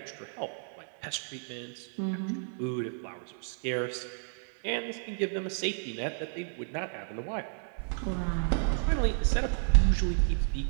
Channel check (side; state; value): left; silent; digital silence